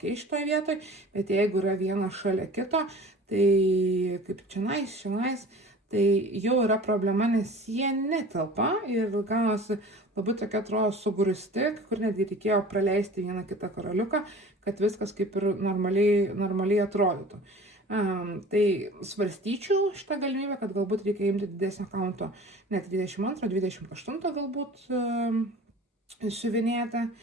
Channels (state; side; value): normal; both; correlation 0.42